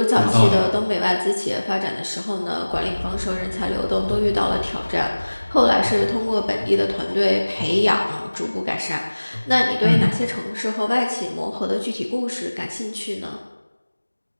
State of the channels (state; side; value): inverted; both; correlation -1.00